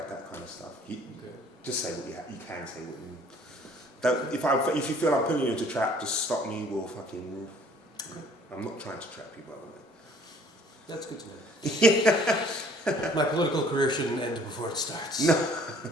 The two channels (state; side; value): normal; both; correlation 0.56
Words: that kind of stuff. Just say what you can say. What you don't, if you feel I'm putting you into a trap, just stop me. I'm not trying to trap you, by the way. That's good to know. My political career shouldn't end before it starts. No.